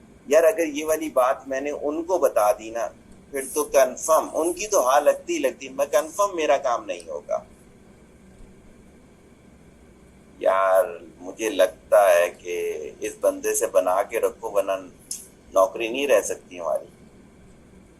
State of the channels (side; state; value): both; identical; correlation 1.00